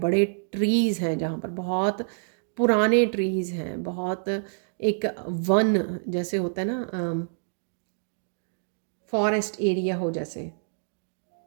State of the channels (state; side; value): silent; left; digital silence